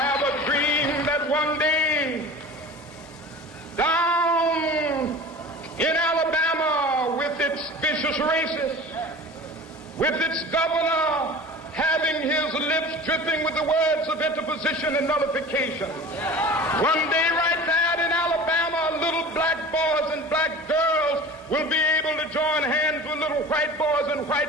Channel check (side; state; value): both; normal; correlation 0.38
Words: a dream that one day races, with its governor having his lips dripping with the words of interposition and nullification. One day right now in Alabama, little black boys and black girls will be able to join hands with little white boys and